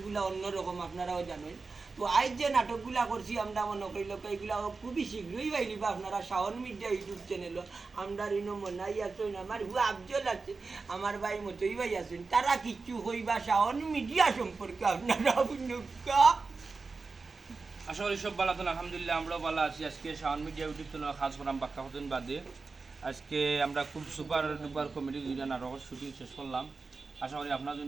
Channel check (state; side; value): quieter; left; 4.2 dB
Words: অন্যরকম, আপনারাও জানেন। তো আজ যে নাটকগুলা করছি আমরা মনে করি লোক এইগুলা খুবই শীঘ্রই পাইলিবা আপনারা শাওন মিডিয়া ইউটিউব চ্যানেল। আমরা ঋণ মনাই আছেন, আমার হু আফজল আছে, আমার ভাই মতই ভাই আছেন। তারা কিচ্ছু হইবা শাওন মিডিয়া সম্পর্কে আপনারা আশা করি সব ভালো আছেন। আলহামদুলিল্লাহ আমরাও ভালো আছি। আজকে শাওন মিডিয়া ইউটিউব চ্যানেল কাজ করাম বাক্কা হতেন বাদে আজকে আমরা খুব সুপার ডুপার কমেডি দুইটা নাটকের শুটিং শেষ করলাম। আশা করি আপনারা